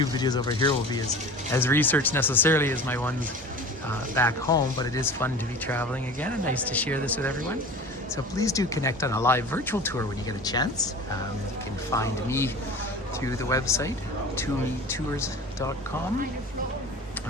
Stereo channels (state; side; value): normal; both; correlation 0.38